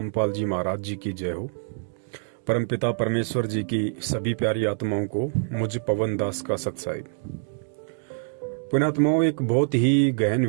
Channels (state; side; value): silent; left; digital silence